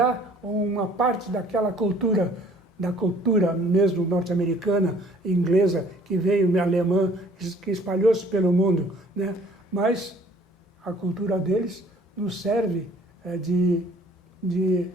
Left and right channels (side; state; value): both; normal; correlation 0.56